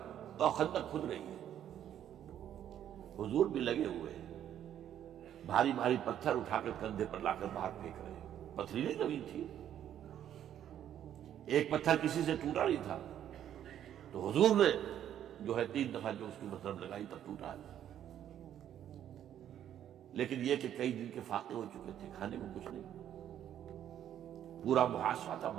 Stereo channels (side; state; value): left; quieter; 10.5 dB